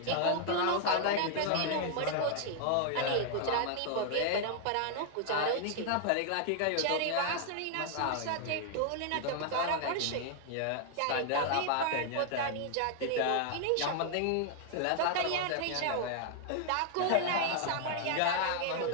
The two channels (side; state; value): both; different; correlation 0.00